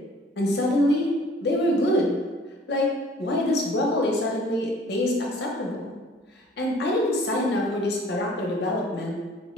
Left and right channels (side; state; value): both; normal; correlation 0.53